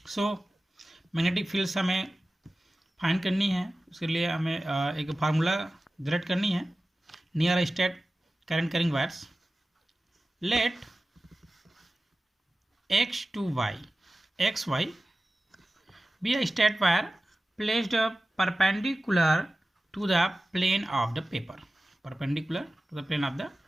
So magnetic fields हमें find करनी है. उसके लिए हमें एक formula generate करनी है. Near state current carrying wires. Let x to y xy be a state wire placed perpendicular to the plane of the paper. Perpendicular to the plane of the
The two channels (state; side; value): normal; both; correlation 0.96